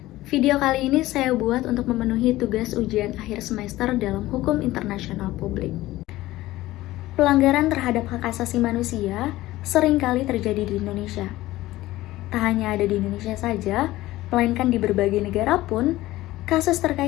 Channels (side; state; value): right; quieter; 16.9 dB